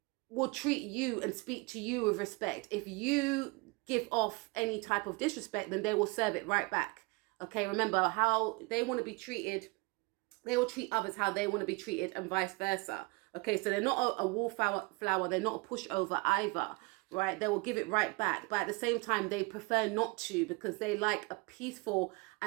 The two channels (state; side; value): quieter; left; 27.3 dB